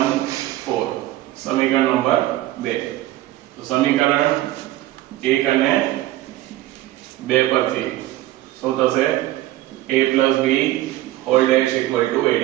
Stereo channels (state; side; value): quieter; left; 15.5 dB